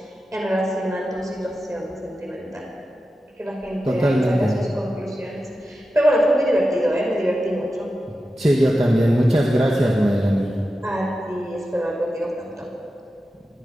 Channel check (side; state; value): both; normal; correlation 0.92